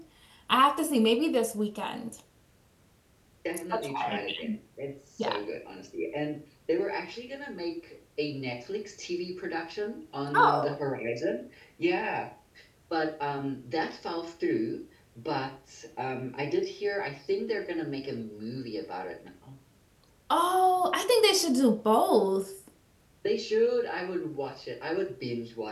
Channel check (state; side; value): identical; both; correlation 1.00